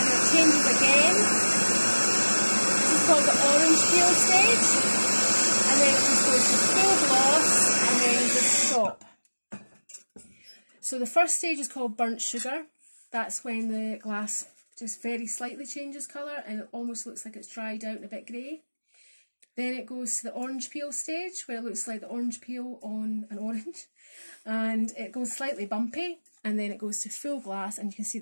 it's changes again. This is called the orange peel stage, and then it just goes to full gloss and then just stop. So the first stage is called burnt sugar. That's when the glass just very slightly changes colour and it almost looks like it's dried out and a bit grey. Then it goes to the orange peel stage, where it looks like the orange peel on an orange, and it goes slightly bumpy, and then it goes to full glass and you can see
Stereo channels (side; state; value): both; inverted; correlation -1.00